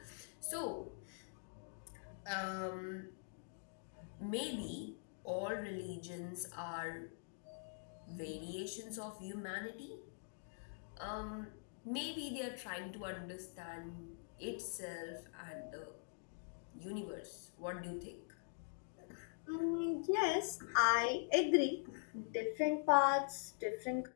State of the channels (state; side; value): silent; right; digital silence